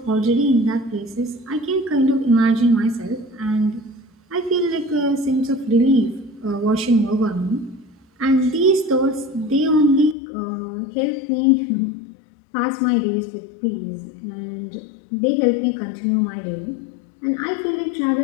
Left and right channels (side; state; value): right; drops out; at 10.2 s